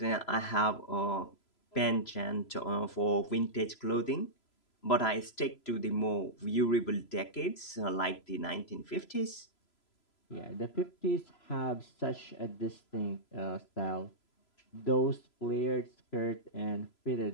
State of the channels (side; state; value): right; late; 3.0 ms